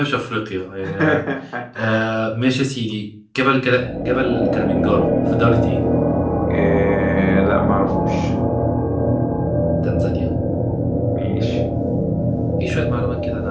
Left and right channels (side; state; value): both; identical; correlation 1.00